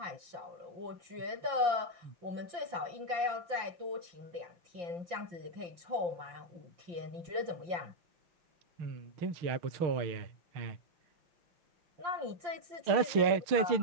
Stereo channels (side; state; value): left; late; 5.8 ms